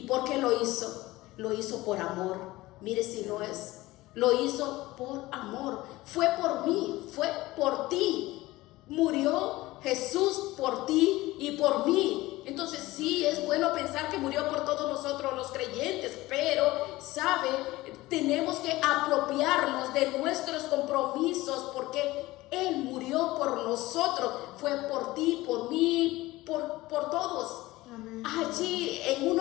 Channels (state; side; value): quieter; right; 18.7 dB